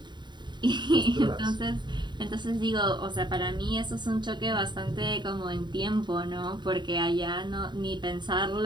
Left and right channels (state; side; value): late; left; 0.22 ms